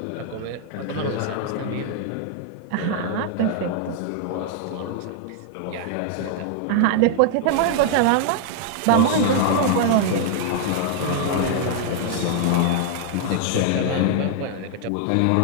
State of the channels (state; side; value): different; both; correlation 0.00